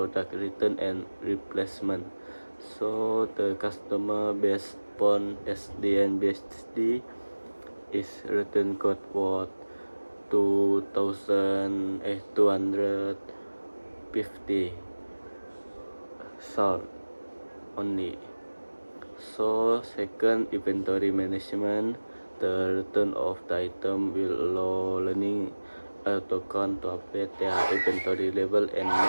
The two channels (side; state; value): both; inverted; correlation -1.00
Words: return and replacement. So the customer based upon SD and BSD is return code worth 2,250 sold only. So second inventory management, the return of the item will allow learning account to update their inventory level and